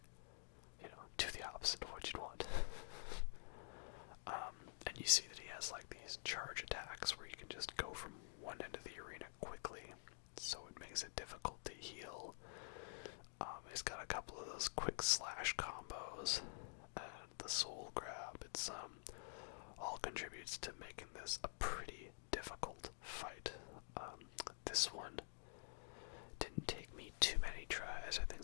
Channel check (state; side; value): silent; right; digital silence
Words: do the opposite of what you'd want. And you see that he has, like, these charge attacks where you can just go from one end of the arena quickly, so it makes it difficult to heal. He's got a couple of those quick slash combos, and the soul grab. It's, all contributes to making this a pretty difficult fight. This one didn't take me too many tries. I